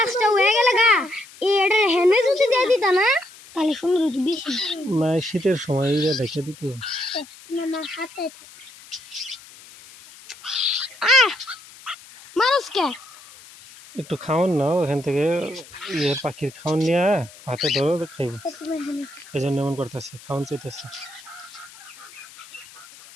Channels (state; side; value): noise; left; hiss, 20 dB below the sound